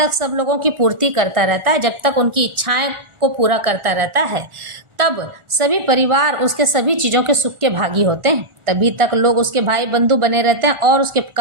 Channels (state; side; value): late; left; 1.4 ms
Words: सब लोगों की पूर्ति करता रहता है, जब तक उनकी इच्छाएं को पूरा करता रहता है, तब सभी परिवार उसके सभी चीज़ों के सुख के भागी होते हैं। तभी तक लोग उसके भाई बंधु बने रहते हैं और उसके